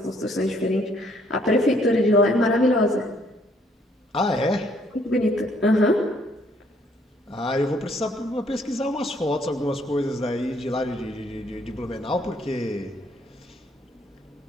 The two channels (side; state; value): both; normal; correlation 0.66